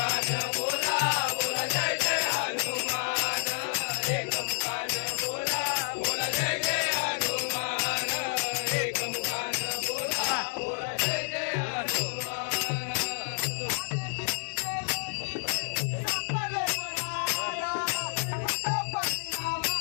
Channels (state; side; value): silent; right; 58 dB below the other